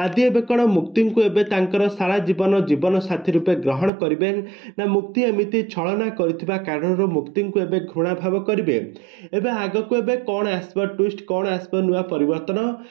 एबे कोन मुक्ति को एबे तांकर सारा जीवन साथी रूपे ग्रहण करिबे ना मुक्ति एमिति छलना करथिबा कारण मुक्ति को एबे घृणा भाव करिवे। एबे आगो को एबे कौन आसबा ट्विस्ट कौन आसबा नुआ परिवर्तन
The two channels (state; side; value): drops out; left; at 3.9 s